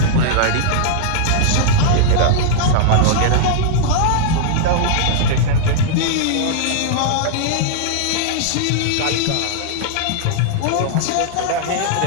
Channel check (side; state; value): both; different; correlation -0.01